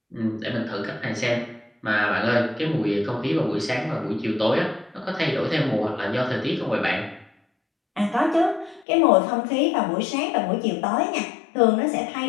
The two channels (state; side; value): drops out; right; at 8.8 s